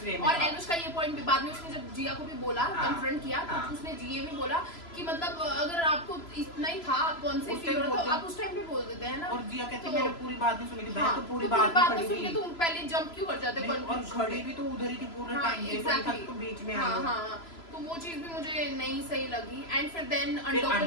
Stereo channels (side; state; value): right; late; 3.0 ms